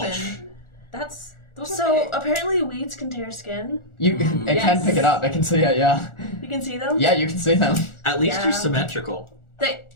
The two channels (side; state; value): right; late; 1.4 ms